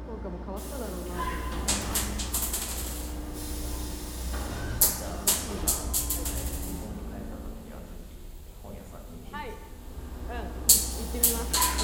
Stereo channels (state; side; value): identical; both; correlation 1.00